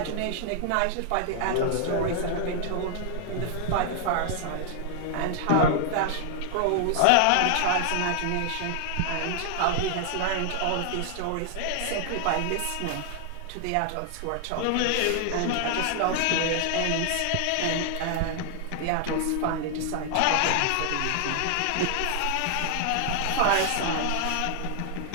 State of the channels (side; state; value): both; different; correlation 0.00